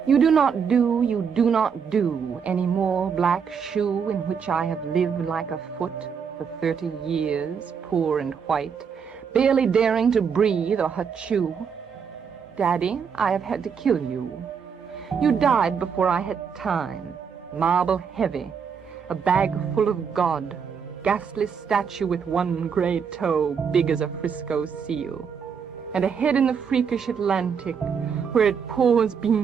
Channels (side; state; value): left; quieter; 6.6 dB